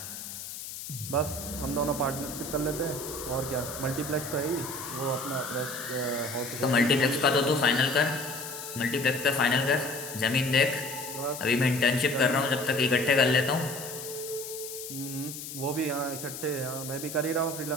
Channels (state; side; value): noise; left; hiss, 9 dB below the sound